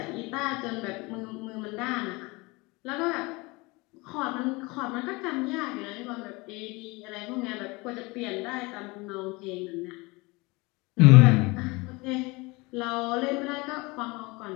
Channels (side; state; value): right; quieter; 24.8 dB